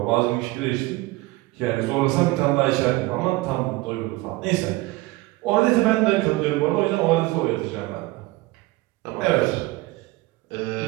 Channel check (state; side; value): quieter; left; 20.2 dB